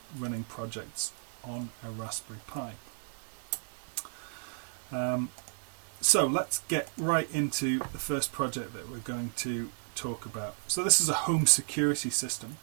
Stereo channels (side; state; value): left; silent; digital silence